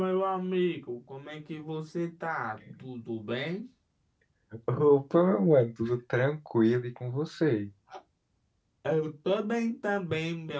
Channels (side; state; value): both; identical; correlation 1.00